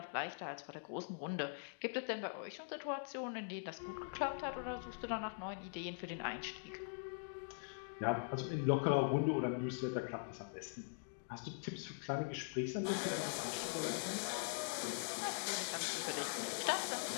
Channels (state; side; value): silent; right; digital silence